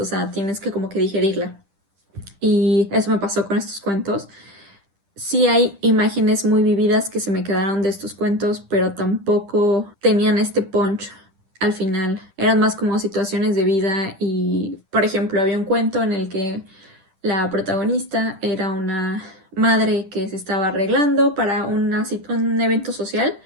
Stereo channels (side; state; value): left; late; 10 ms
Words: sea, tienes que como que digerirla. Y eso me pasó con estos cuentos. Sí hay imágenes muy vividas que se me quedaron de estos cuentos, pero tampoco tenían este punch al final. Eran más como situaciones de vida y, por ejemplo, había un cuento en el que la protagonista era una madre que se estaba arreglando para un evento social